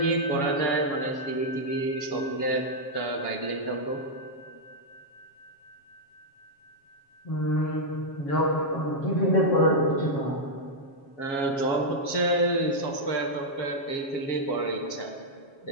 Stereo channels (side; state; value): right; late; 7.3 ms